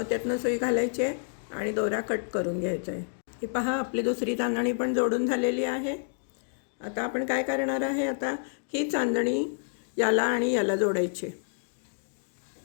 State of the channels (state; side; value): silent; right; digital silence